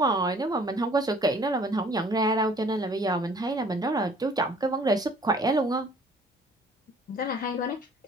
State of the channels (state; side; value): normal; both; correlation 0.54